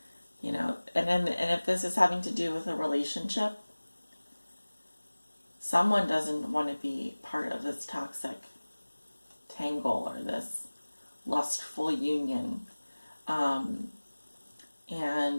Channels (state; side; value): inverted; both; correlation -1.00